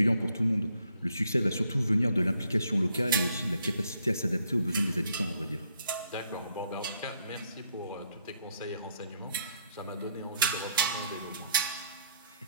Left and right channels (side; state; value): both; inverted; correlation -0.71